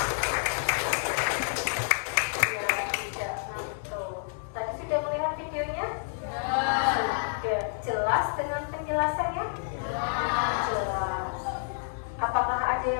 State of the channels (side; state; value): right; silent; digital silence